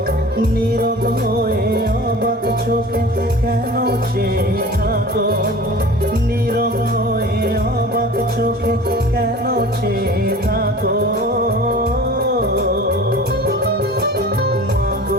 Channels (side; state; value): both; normal; correlation 0.40